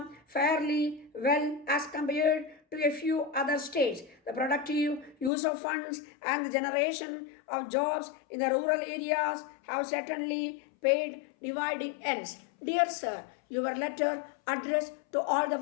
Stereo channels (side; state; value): right; drops out; at 5.3 s